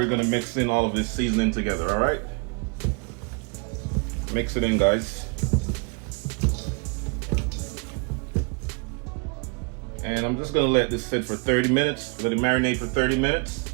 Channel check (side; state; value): left; quieter; 33.7 dB